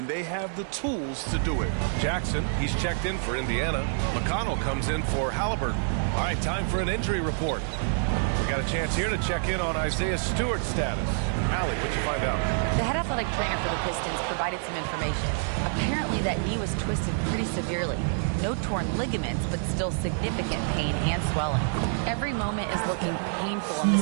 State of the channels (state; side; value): silent; left; digital silence